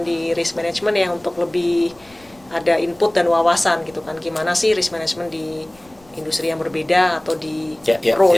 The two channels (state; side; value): noise; left; rumble, 29 dB below the sound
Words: di risk management ya untuk lebih ada input dan wawasan gitu kan. Gimana sih risk management di industri yang berbeda atau di Ya,